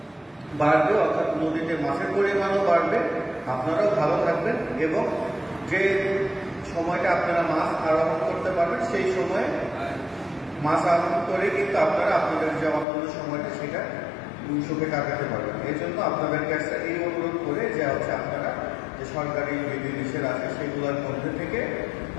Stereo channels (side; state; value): right; drops out; at 12.9 s